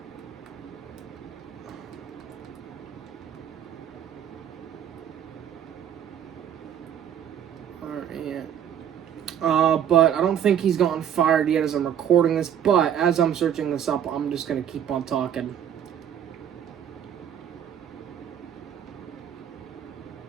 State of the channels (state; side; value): quieter; left; 9.3 dB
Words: But I don't think he's gotten fired yet as I'm recording this, but as I'm searching this up, I'm just going to keep on talking.